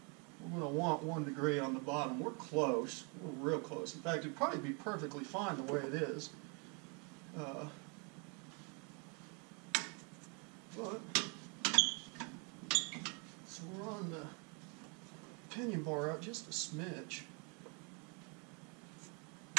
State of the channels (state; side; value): quieter; left; 34.7 dB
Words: we're going to want 1 degree on the bottom. We're close. We're real close. In fact, it'd probably be perfectly fine the way it is. So we're on the pinion bar out just a smidge.